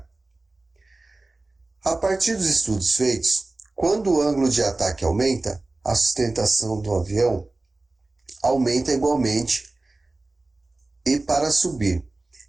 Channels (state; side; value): quieter; left; 3.1 dB